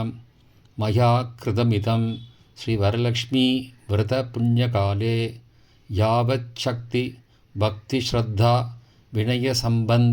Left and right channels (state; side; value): identical; both; correlation 1.00